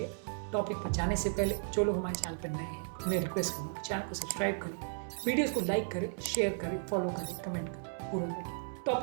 टॉपिक पर जाने से पहले जो लोग हमारे चैनल पर नए हैं उन्हें रिक्वेस्ट करूँगा चैनल को सब्सक्राइब करें, वीडियोज़ को लाइक करें, शेयर करें, फॉलो करें, कमेंट करें, पूरा देखें।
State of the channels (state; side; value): silent; left; digital silence